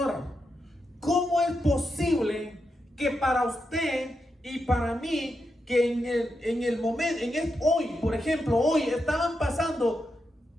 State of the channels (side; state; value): both; normal; correlation 0.86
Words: ¿cómo es posible que para usted y para mí, que en el momento, hoy, por ejemplo, hoy estaban pasando